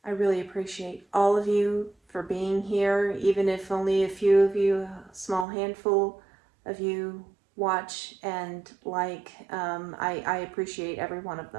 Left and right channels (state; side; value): drops out; left; at 5.5 s